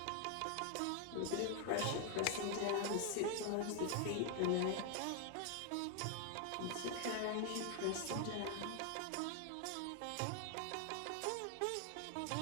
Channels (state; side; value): different; both; correlation 0.00